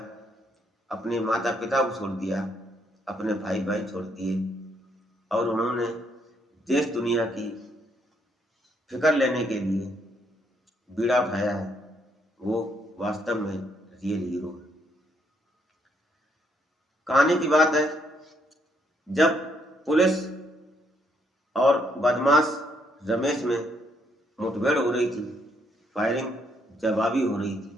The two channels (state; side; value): normal; both; correlation 0.72